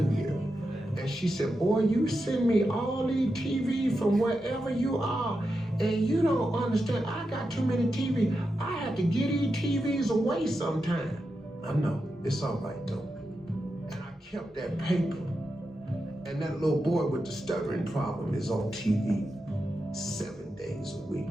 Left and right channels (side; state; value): both; normal; correlation 0.88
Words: year and she said, boy, you send me all these TV from wherever you are, and you don't understand, I got too many TV. I have to get these TVs away sometime. I know, it's all right though. And I kept that paper, and that little boy with the stuttering problem is on TV 7 days a week.